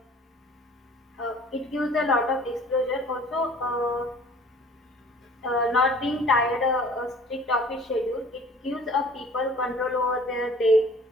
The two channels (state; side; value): normal; both; correlation 0.49